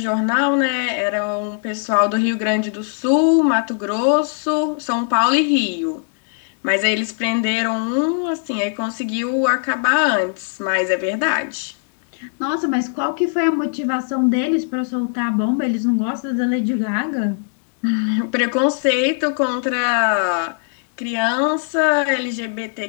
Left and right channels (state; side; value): silent; right; 58 dB below the other